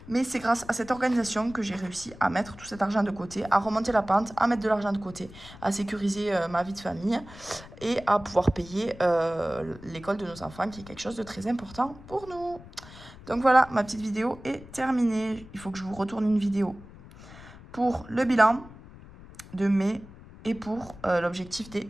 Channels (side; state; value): left; noise; rumble, 18 dB below the sound